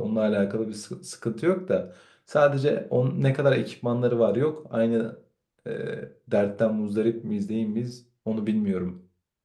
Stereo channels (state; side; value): identical; both; correlation 1.00